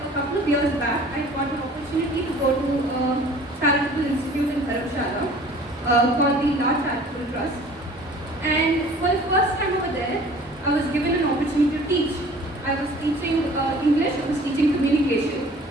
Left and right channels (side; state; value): both; normal; correlation 0.48